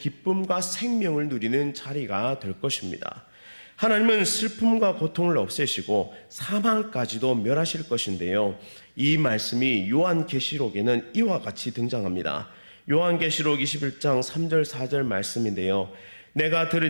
생명을 누리는 자리가 될 것입니다. 하나님은 슬픔과 고통을 없애시고 사망까지도 멸하실 것인데요. 이 말씀이 요한계시록에는 이와 같이 등장합니다. 요한계시록 21장 3절 4절 말씀인데요. 내가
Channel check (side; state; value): both; inverted; correlation -1.00